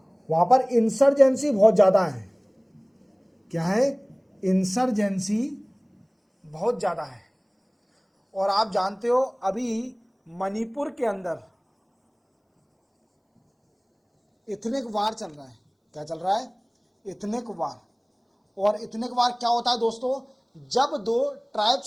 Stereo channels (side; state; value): both; identical; correlation 1.00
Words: वहां पर इंसर्जेंसी बहुत ज्यादा है। क्या है? इंसर्जेंसी बहुत ज्यादा है। और आप जानते हो अभी मणिपुर के अंदर इथनिक वार चल रहा है। क्या चल रहा है? इथनिक वार। और इथनिक वार क्या होता है दोस्तों? जब दो